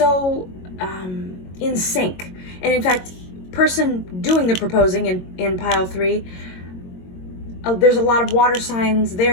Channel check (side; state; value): right; late; 22 ms